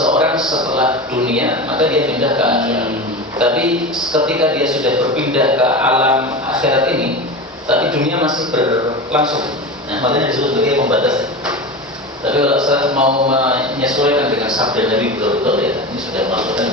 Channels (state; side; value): normal; both; correlation 0.26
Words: setelah dunia maka dia pindah ke akhirat. Tapi ketika dia sudah berpindah ke alam akhirat ini, tapi dunia masih berlangsung. Nah, makanya disebut sebagai pembatas. Tapi kalau saya mau menyesuaikan dengan sabda Nabi betul-betul, ya ini sudah